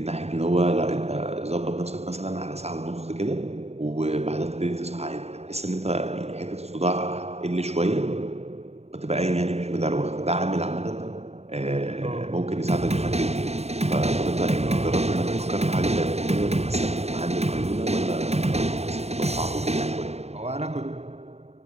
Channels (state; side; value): late; left; 0.31 ms